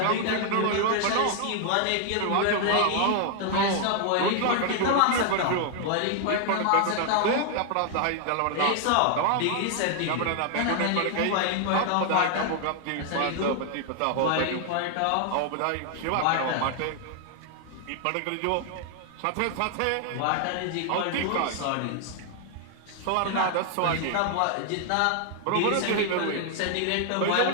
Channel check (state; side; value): different; both; correlation 0.00